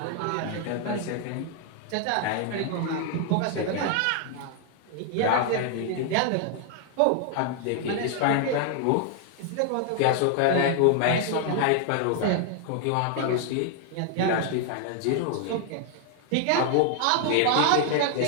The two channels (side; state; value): both; different; correlation 0.00